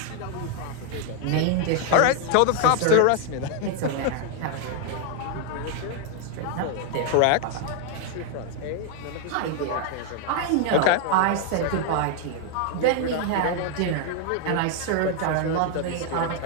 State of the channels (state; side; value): different; both; correlation 0.00